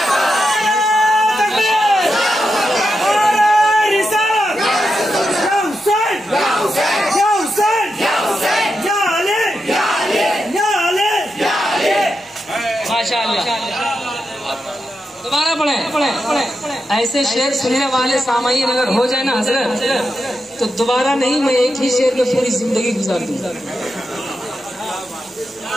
या ऐसे शेर सुनने वाले सामाईन अगर हो जाए ना हजरत, तो दोबारा नहीं, मैं एक ही शेर में पूरी जिंदगी गुजार दूंगा।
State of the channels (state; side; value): normal; both; correlation 0.87